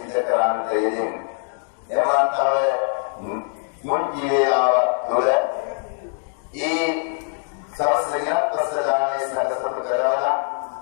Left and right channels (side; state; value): right; silent; 57 dB below the other